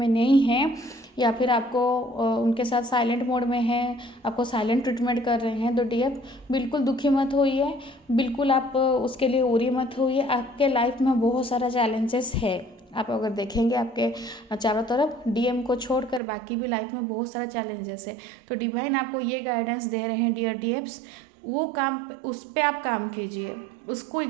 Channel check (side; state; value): left; drops out; at 16.2 s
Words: नहीं हैं या फिर आपको उनके साथ साइलेंट मोड में हैं, आपको साइलेंट ट्रीटमेंट कर रहे हैं, तो डीएफ बिल्कुल दुखी मत होइए, बिल्कुल आप उसके लिए उरी मत होइए। आपके लाइफ में बहुत सारा चैलेंजेस है, आप अगर देखेंगे आपके चारों तरफ डीएम को छोड़कर बाकी भी लाइफ में बहुत सारा चैलेंजेस है। तो डिवाइन आपको ये गाइडेंस दे रहे हैं डियर डीएफ्स, वो काम उस पर आप काम कीजिए, उसको